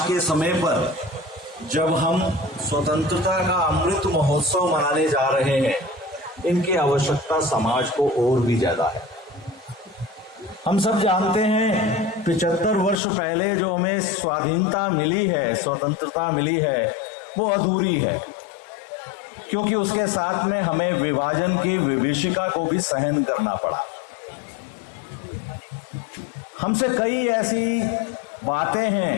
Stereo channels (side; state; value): right; drops out; at 13.0 s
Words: के समय पर जब हम स्वतंत्रता का अमृत महोत्सव मनाने जा रहे हैं, इनकी आवश्यकता समाज को और भी ज्यादा है। हम सब जानते हैं 75 वर्ष पहले जो हमें स्वाधीनता मिली है, स्वतंत्रता मिली है, वो अधूरी है, क्योंकि उसके साथ में हमें विभाजन की विभीषिका को भी सहन करना पड़ा। हमसे कई ऐसी बातें